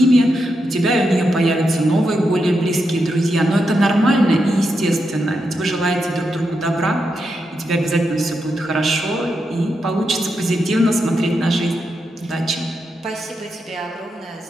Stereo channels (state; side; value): normal; both; correlation 0.85